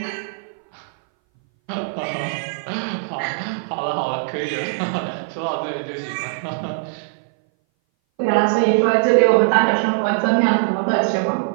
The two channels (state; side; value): silent; left; 60 dB below the other